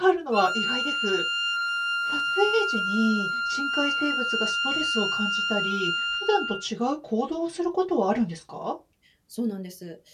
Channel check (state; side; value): identical; both; correlation 1.00